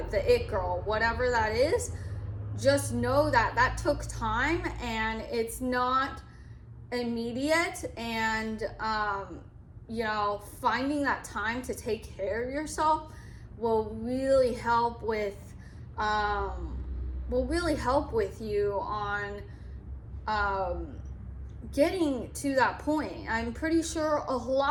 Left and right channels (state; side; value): identical; both; correlation 1.00